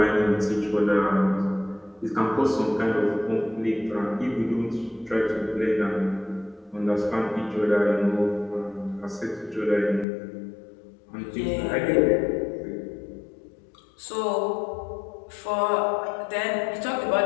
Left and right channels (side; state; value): right; drops out; at 10.1 s